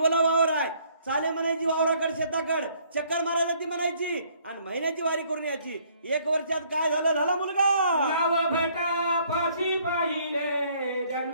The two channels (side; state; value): both; inverted; correlation -0.63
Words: वावर आहे, चाले म्हणायची वावराकड शेताकड, चक्कर मारायची म्हणायची आणि महिन्याची वारी करून यायची. एक वर्षात काय झालं? झाला मुलगा. नाव भटा फाशी पाहिले